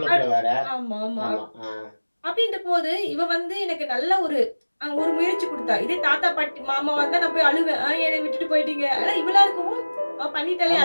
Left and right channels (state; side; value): inverted; both; correlation -1.00